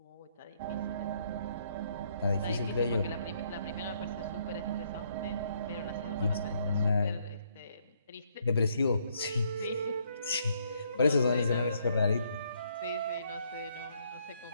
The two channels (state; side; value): inverted; both; correlation -0.70